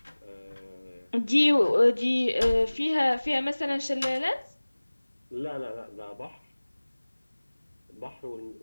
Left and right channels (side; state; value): both; inverted; correlation -1.00